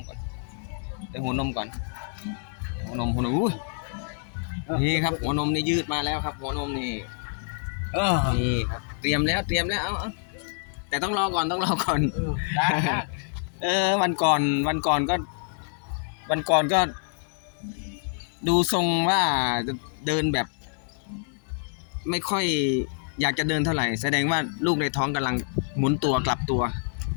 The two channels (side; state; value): right; silent; digital silence